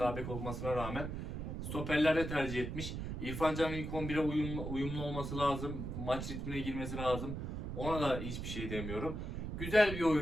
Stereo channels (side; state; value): right; noise; rumble, 5 dB below the sound